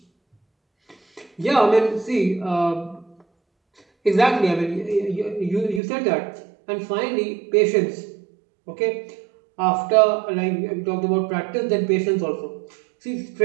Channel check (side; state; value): left; drops out; at 5.8 s